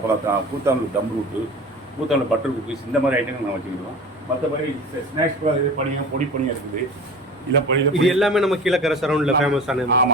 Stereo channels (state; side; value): normal; both; correlation 0.36